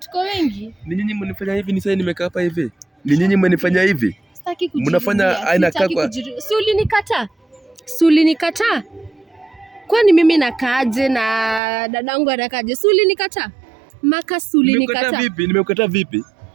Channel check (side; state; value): left; drops out; at 11.6 s